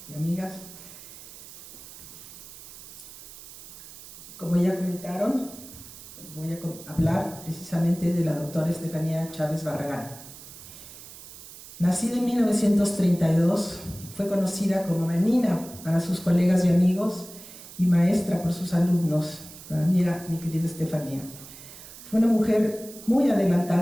y amigas. Como ya comentaron, voy a hablar precisamente de la doctora Estefanía Chávez Barragán. Nacida en 1932, fue conocida como menina para sus colegas y amigos y maestra por sus alumnos. Para mí era mi querida Estefanía. Fue una mujer muy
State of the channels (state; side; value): noise; right; hiss, 16 dB below the sound